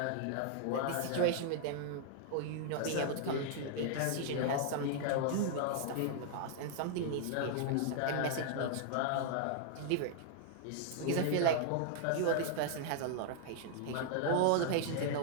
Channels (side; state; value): both; different; correlation -0.01